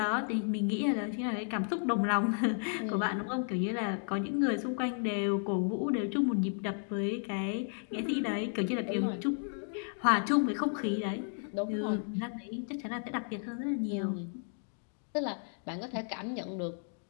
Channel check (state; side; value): silent; right; 56 dB below the other